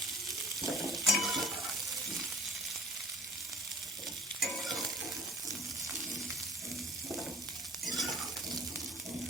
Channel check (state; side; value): normal; both; correlation 0.46